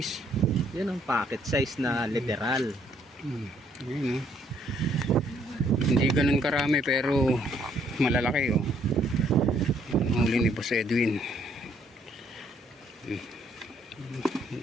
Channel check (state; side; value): normal; both; correlation 0.67